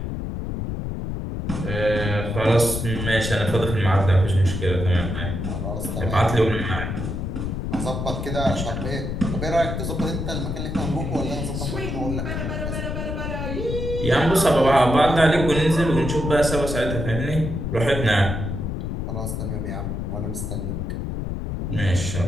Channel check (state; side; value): noise; left; rumble, 3 dB below the sound